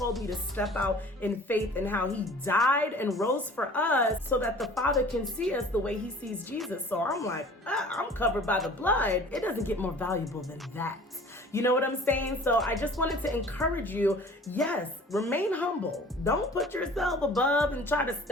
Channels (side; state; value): both; normal; correlation 0.47